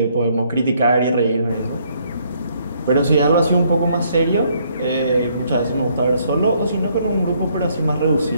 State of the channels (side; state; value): both; inverted; correlation -0.68